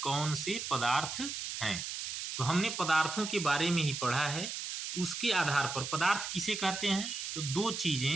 कौन से पदार्थ हैं? तो हमने पदार्थों के बारे में ही पढ़ा है, उसके आधार पर पदार्थ किसे कहते हैं? तो दो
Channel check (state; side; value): noise; right; hiss, 5 dB below the sound